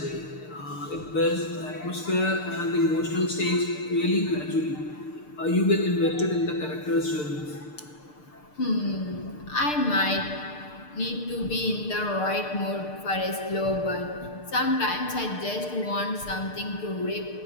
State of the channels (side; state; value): right; late; 6.7 ms